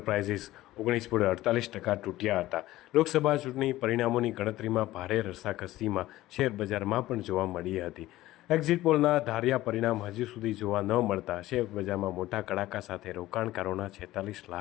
19.48% તૂટ્યા હતા. લોકસભા ચૂંટણી પરિણામોની ગણતરીમાં ભારે રસાકસીમાં શેરબજારમાં પણ જોવા મળી હતી. એક્ઝિટ પોલના ધાર્યા પરિણામ હજી સુધી જોવા ન મળતા શેરબજારમાં મોટા કડાકા સાથે રોકાણકારોના 46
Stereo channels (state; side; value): quieter; right; 16.2 dB